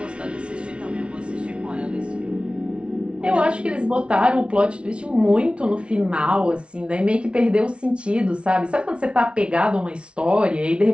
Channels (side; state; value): left; late; 0.059 ms